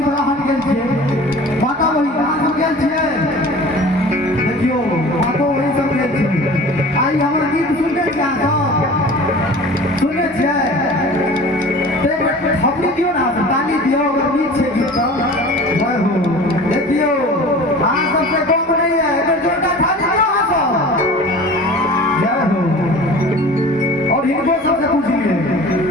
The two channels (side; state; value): both; normal; correlation 0.41